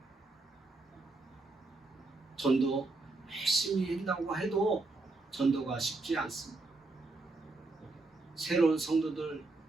전도 열심히 한다고 해도 전도가 쉽지 않습니다. 새로운 성도들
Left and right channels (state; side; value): quieter; left; 3.3 dB